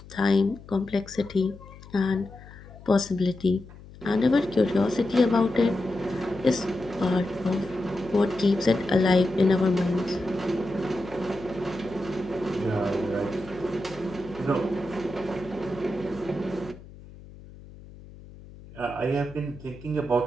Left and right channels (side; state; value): left; noise; hum, 18 dB below the sound